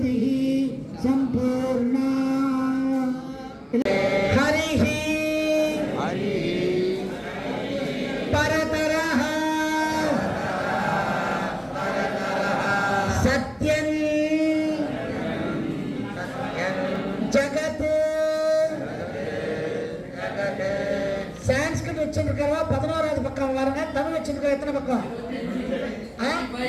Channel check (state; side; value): identical; both; correlation 1.00